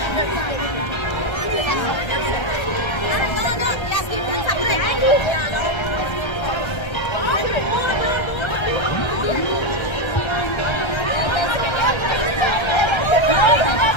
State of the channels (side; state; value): right; late; 1.3 ms